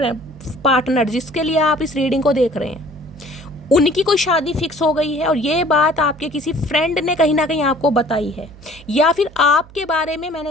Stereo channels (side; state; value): right; noise; hum, 21 dB below the sound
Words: पार्टनर जिसके लिए आप इस रीडिंग को देख रहे हैं उनकी कोई शादी फिक्स हो गई है, और ये बात आपके किसी फ्रेंड ने कहीं ना कहीं आपको बताई है, या फिर आपके बारे में मैंने